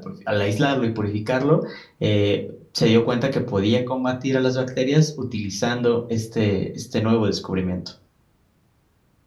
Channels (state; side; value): identical; both; correlation 1.00